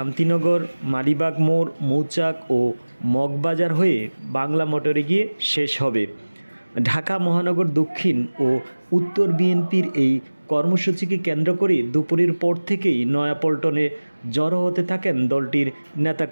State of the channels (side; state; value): both; inverted; correlation -1.00